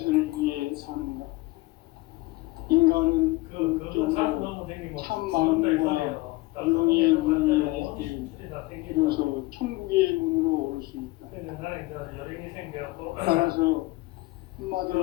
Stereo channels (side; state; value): right; quieter; 21.4 dB